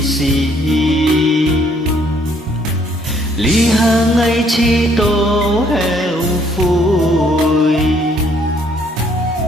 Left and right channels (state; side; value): normal; both; correlation 0.65